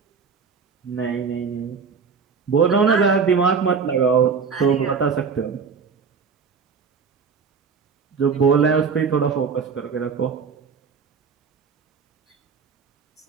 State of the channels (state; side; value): quieter; left; 5.7 dB